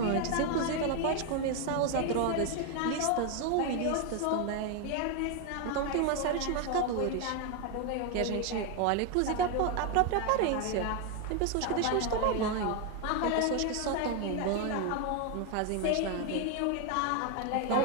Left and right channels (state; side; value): different; both; correlation 0.01